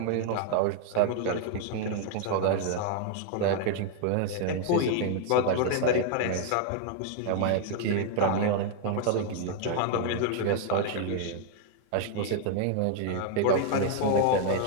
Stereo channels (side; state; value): both; different; correlation 0.00